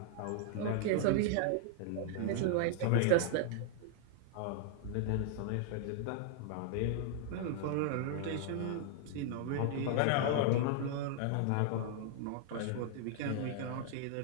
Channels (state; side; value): different; both; correlation 0.00